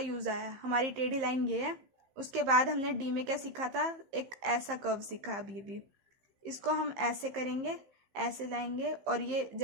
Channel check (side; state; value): left; late; 15 ms